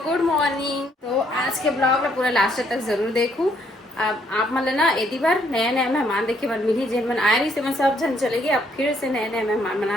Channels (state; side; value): normal; both; correlation 0.69